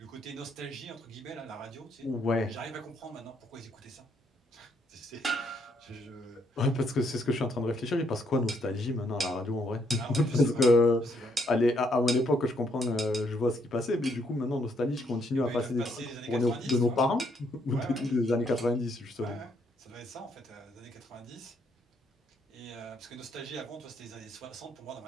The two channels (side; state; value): both; normal; correlation 0.72